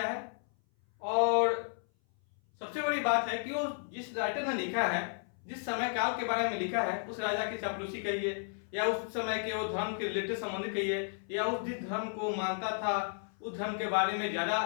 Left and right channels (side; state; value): right; silent; 56 dB below the other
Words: है। और सबसे बड़ी बात है कि वो जिस राइटर ने लिखा है, जिस समय काल के बारे में लिखा है, उस राजा की चापलूसी कहिए, या उस समय के वो धर्म के रिलेटेड संबंधित कहिए, या उस जिस धर्म को मानता था उस धर्म के बारे में ज्यादा